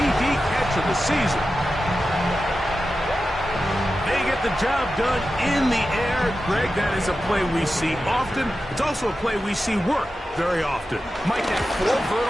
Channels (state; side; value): normal; both; correlation 0.92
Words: catch of the season. They get the job done in the air. Greg, that is a play we see often. It's also a play we see work very often. Mike, that 4